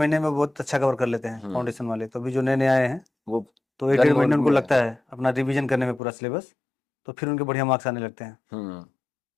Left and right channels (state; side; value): drops out; right; at 6.0 s